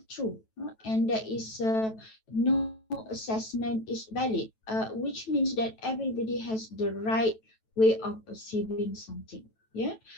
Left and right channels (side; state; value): right; late; 9.1 ms